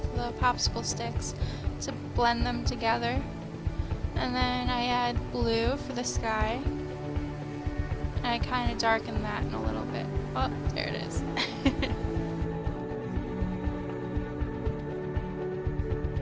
the popsicle sticks to blend them together. And then I add blue for the sky. And I kind of darken that in a little bit. Oh, there it is.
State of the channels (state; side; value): identical; both; correlation 1.00